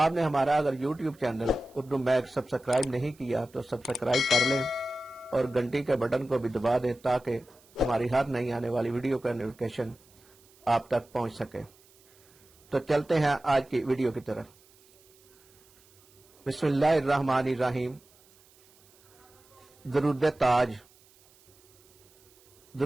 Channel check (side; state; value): right; noise; hiss, 29 dB below the sound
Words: हमारा अगर YouTube channel Urdu mag subscribe नहीं किया तो सब्सक्राइब कर लें और घंटी के बटन को भी दबा दें ताकि हमारी हर नई आने वाली वीडियो का नोटिफिकेशन आप तक पहुंच सके। तो चलते हैं आज की वीडियो की तरफ। बिस्मिल्लाहिर्रहमानिर्रहीम। दरूद ताज।